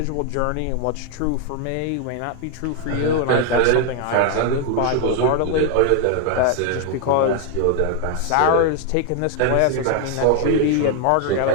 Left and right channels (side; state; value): both; different; correlation 0.00